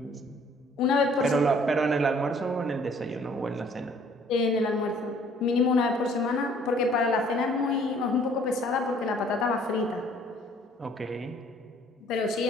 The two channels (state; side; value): normal; both; correlation 0.58